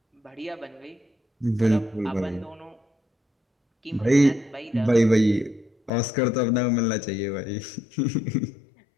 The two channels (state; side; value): drops out; right; at 5.9 s